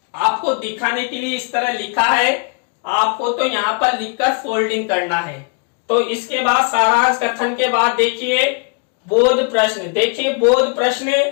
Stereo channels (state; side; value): quieter; right; 37.1 dB